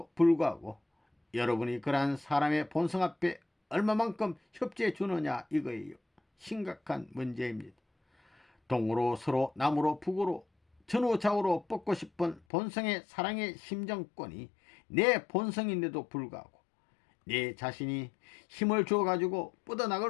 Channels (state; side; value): drops out; right; at 12.4 s